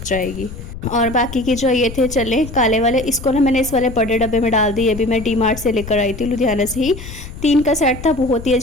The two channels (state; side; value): noise; left; rumble, 12 dB below the sound